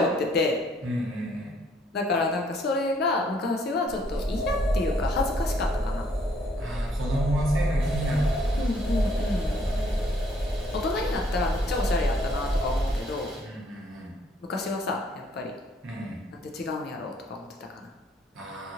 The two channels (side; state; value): both; normal; correlation 0.65